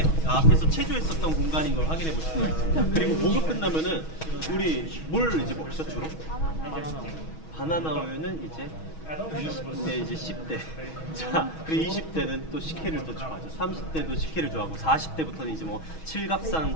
앞에서 체조했었던 공간인 걸 확인해 보실 수가 있습니다. 그리고 목욕 끝나면은 우리 뭘 이제 먹죠 주로? 바나나 우유는 이제 20대 이제 10대. 자, 그리고 20대는 또 식혜를 또 좋아하죠. 30대도 식혜를 좋아하고 40대부터는 이제 뭐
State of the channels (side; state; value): right; late; 6.3 ms